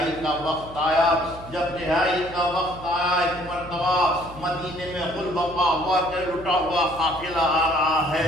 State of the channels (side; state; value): left; noise; hum, 17 dB below the sound